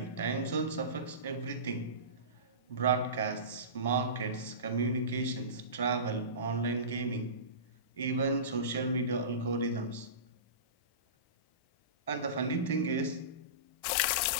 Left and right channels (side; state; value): right; late; 1.1 ms